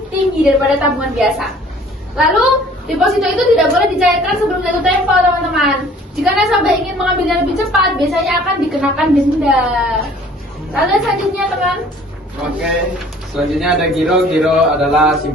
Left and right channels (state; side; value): normal; both; correlation 0.53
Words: tinggi daripada tabungan biasa. Lalu deposito itu tidak boleh dicairkan sebelum jatuh tempo, teman-teman. Jika nasabah ingin mengambilnya lebih cepat, biasanya akan dikenakan denda. Lalu selanjutnya, teman. Oke, selanjutnya ada giro. Giro adalah